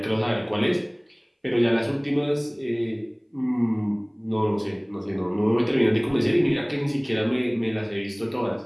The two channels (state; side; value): identical; both; correlation 1.00